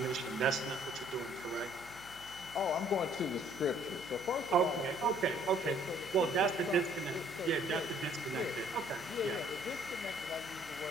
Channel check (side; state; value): left; noise; hum, 19 dB below the sound